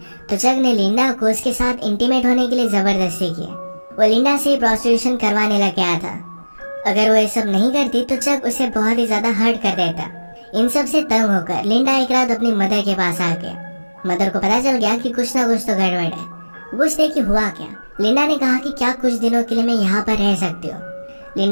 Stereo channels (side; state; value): both; inverted; correlation -1.00